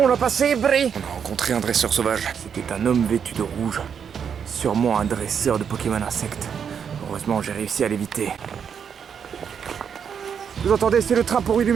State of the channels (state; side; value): quieter; left; 7.4 dB